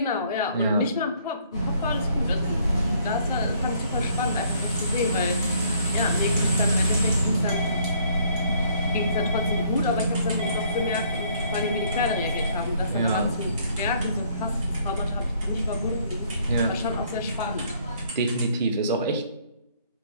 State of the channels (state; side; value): inverted; both; correlation -0.63